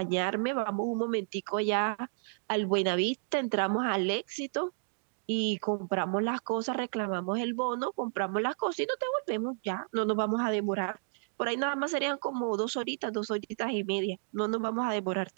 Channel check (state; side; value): silent; left; digital silence